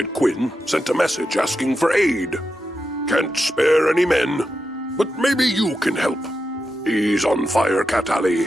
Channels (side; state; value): both; normal; correlation 0.88